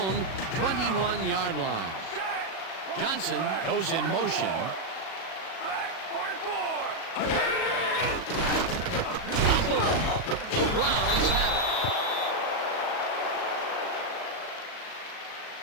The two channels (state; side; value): late; right; 37 ms